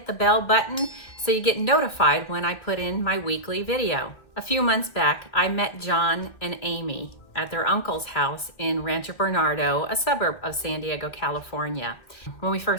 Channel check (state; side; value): late; right; 2.7 ms